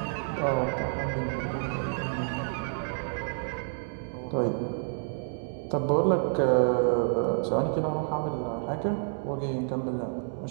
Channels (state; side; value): silent; left; digital silence